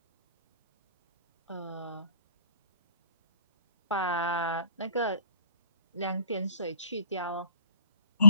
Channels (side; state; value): both; inverted; correlation -0.58